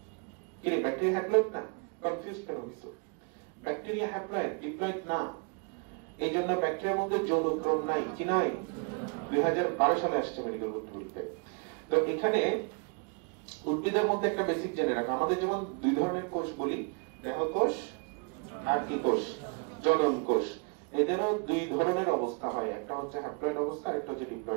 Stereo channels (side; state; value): left; quieter; 34.9 dB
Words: ব্যাকটেরিয়া হ্যাপ্লয়েড না? কনফিউজ কেন হইছো? ব্যাকটেরিয়া হ্যাপ্লয়েড, ডিপ্লয়েড না। এই জন্য ব্যাকটেরিয়ার মধ্যে যৌনক্রম নাই, কি নাই? 2012 সালে আসছে মেডিকেল বোর্ড বলতে। তো এখানে উদ্ভিদের মধ্যে একটা বেসিক জেনে রাখো, আমাদের যেমন দুই ধরনের কোষ বলি, দেহকোষ আর কি কোষ? জনন কোষ। এদেরও দুই ধরনের অবস্থা হয়, একটা হচ্ছে হ্যাপ্লয়েড অবস্থা, একটা হচ্ছে